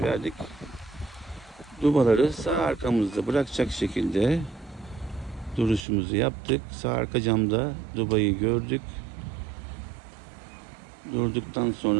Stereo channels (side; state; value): left; drops out; at 5.9 s